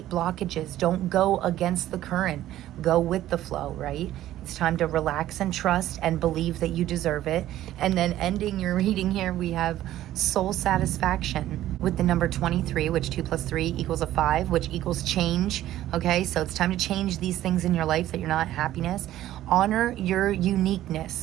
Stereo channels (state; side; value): quieter; left; 13.6 dB